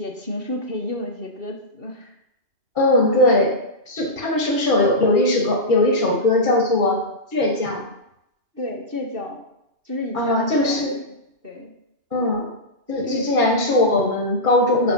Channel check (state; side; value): late; left; 2.8 ms